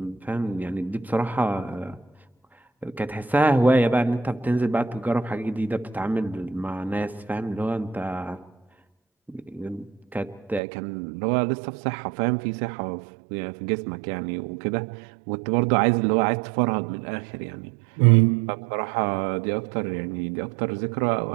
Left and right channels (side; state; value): left; drops out; at 10.6 s